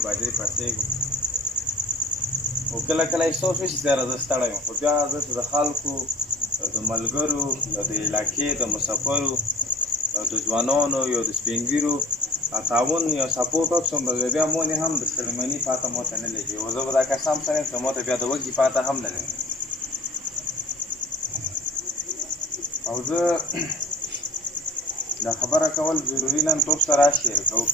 بجې پاڅېږم، خو کله کله احساس وشي چې یاره زه ستړی یم، خو بیا زه د خلکو د ملګرو یا د علاقې د مسافرو یا د ځوانانو یا د سپین ږیرو تعاون یا سپورټ وکړم، بیا مونې هم د ستړمني پاته ماته نه لګي، او زه به دا قسم سره یم چې ماته بیا د وږي پاته هم نه لګي. او زه دا خبره کول ضروري نن تاسو سره شیر کوم.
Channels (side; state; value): both; normal; correlation 0.37